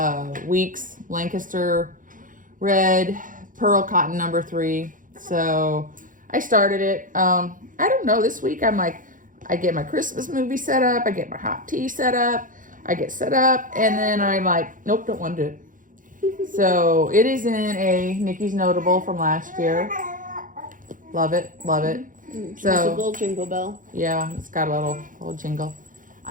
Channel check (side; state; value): left; late; 0.39 ms